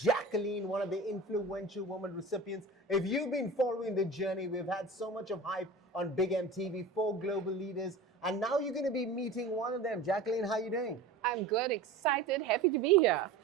one of the influential woman recipients. If you've been following the journey, we've had so much of hype on Big MTV for Global Leaders, and now you're going to be meeting one of them. Jacqueline, how are you doing? I'm good, excited, happy to be here.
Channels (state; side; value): quieter; left; 3.2 dB